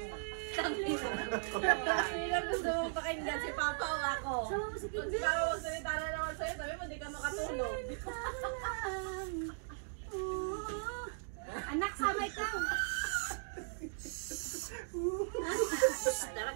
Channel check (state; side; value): silent; left; digital silence